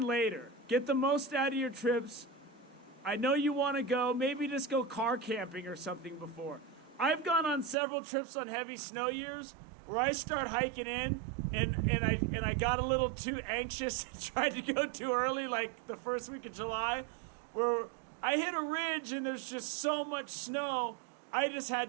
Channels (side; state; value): left; drops out; at 7.8 s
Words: later. Get the most out of your trips. I know you want to go. Maybe just go car camping or something before. I've gone on several trips on heavy snow years where I start hiking in and I got a little too anxious and tried to go too early, like the first week of July, where I hit a ridge and there's just so much snow, I just